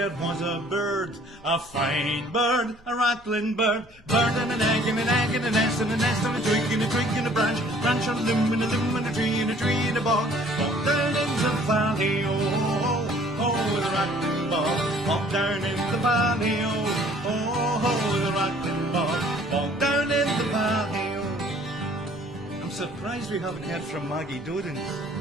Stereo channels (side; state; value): left; noise; hum, 28 dB below the sound